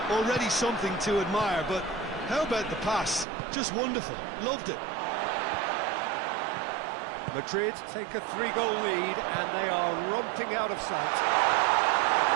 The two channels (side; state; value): left; drops out; at 3.2 s